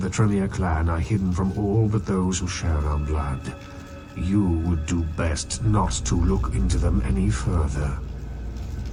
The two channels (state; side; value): identical; both; correlation 1.00